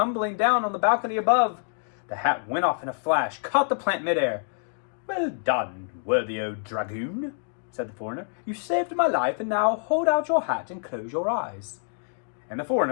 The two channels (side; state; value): right; silent; digital silence